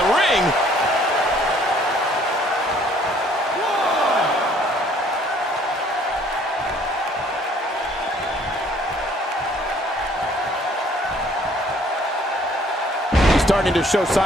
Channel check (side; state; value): both; normal; correlation 0.59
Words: ring. Starting to show